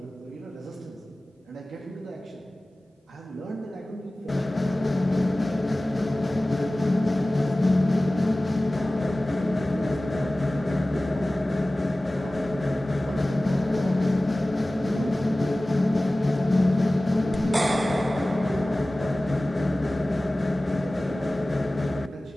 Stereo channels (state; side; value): normal; both; correlation 0.97